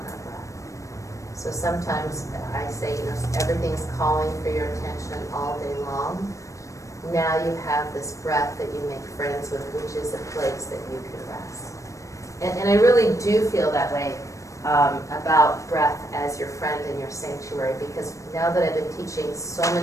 our breath. So sometimes I say, everything's calling for your attention all day long. Now you have this breath that you make friends with, which is a place that you can rest. And I really do feel that way about breath as your friend in your sanctuary, because now that I've been teaching so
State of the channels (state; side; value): late; right; 0.15 ms